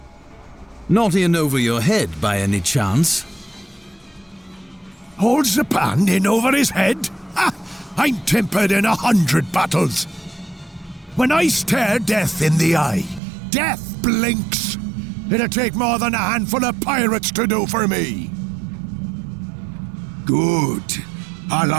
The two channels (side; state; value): left; drops out; at 13.2 s